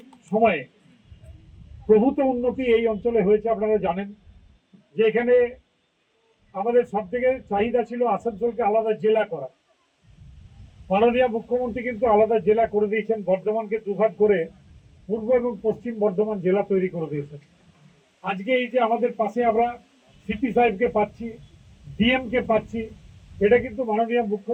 সময়ে প্রভূত উন্নতি এই অঞ্চলে হয়েছে। আপনারা জানেন যে এখানে আমাদের সব থেকে চাহিদা ছিল আসানসোলকে আলাদা জেলা করা। মাননীয় মুখ্যমন্ত্রী কিন্তু আলাদা জেলা করে দিয়েছেন, বর্ধমানকে দুভাগ করে পূর্ব এবং পশ্চিম বর্ধমান জেলা তৈরি করে দিয়েছেন। আজকে এই যে আমাদের পাশে আমরা সিপি সাহেবকে পাচ্ছি, ডিএমকে পাচ্ছি, এটা কিন্তু মাননীয়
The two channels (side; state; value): both; identical; correlation 1.00